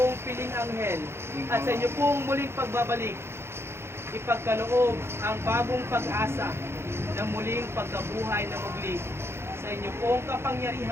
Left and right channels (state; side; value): late; left; 0.12 ms